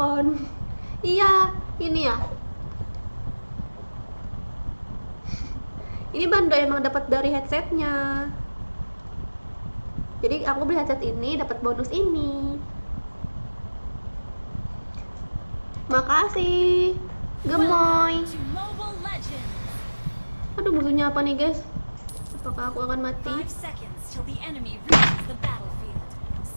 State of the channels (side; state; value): both; inverted; correlation -1.00